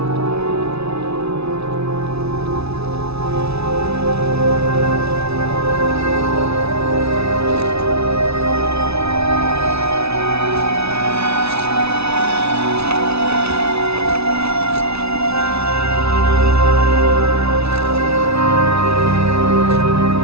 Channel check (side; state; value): left; late; 0.79 ms